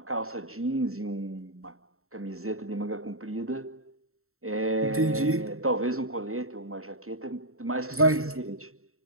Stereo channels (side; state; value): left; late; 0.63 ms